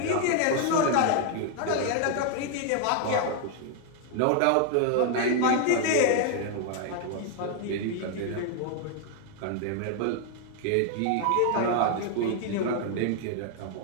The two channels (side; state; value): both; different; correlation 0.00